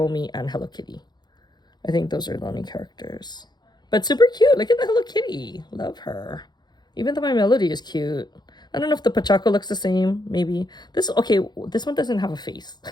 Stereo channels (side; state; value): right; late; 0.21 ms